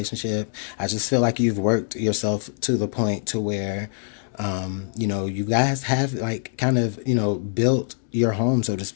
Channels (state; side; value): silent; right; digital silence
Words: I just feel like you've worked yourself to the point to where, you guys have kind of, built your home, so to